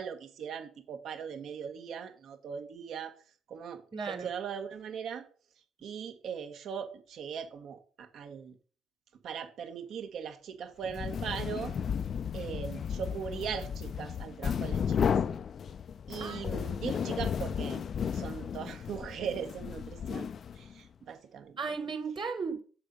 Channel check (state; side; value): normal; both; correlation 0.70